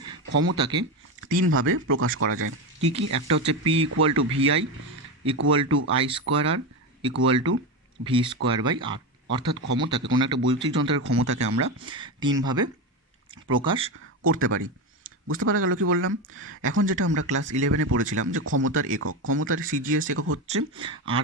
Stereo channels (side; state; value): both; normal; correlation 0.16